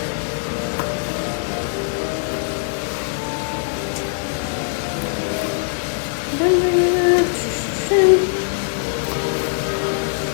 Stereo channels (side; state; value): right; silent; digital silence